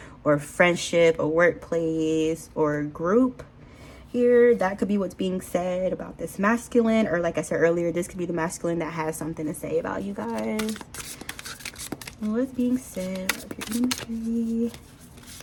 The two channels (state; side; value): identical; both; correlation 1.00